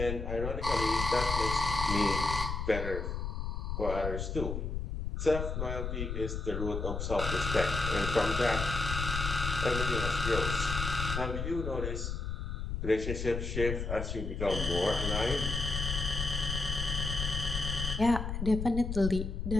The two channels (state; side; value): noise; left; rumble, 3 dB below the sound